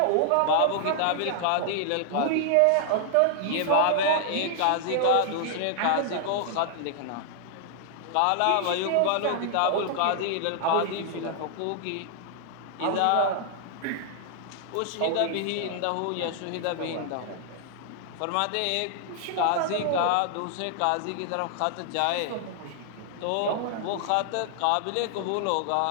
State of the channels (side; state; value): both; different; correlation 0.00